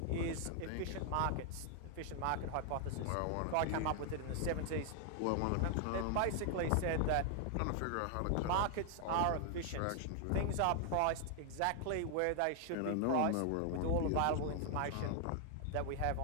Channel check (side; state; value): both; different; correlation 0.00